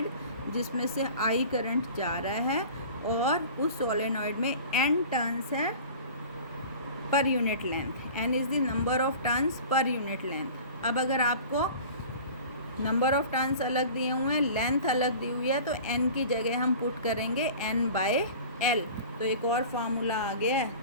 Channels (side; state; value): both; inverted; correlation -0.40